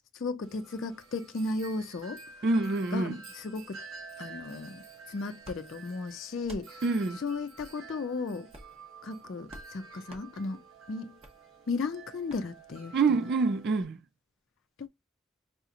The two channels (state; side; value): normal; both; correlation 0.55